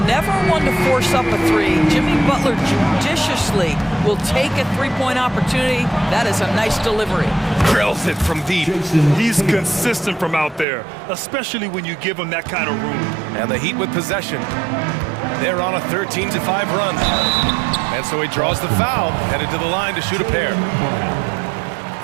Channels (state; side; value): drops out; left; at 10.7 s